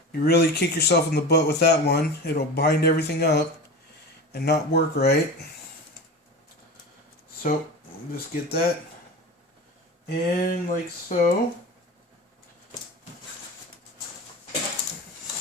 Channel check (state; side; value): normal; both; correlation 0.30